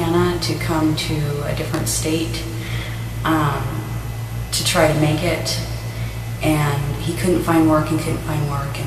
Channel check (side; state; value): both; identical; correlation 1.00